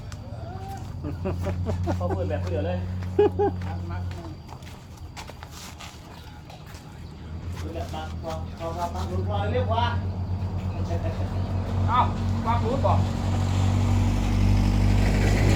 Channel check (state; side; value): identical; both; correlation 1.00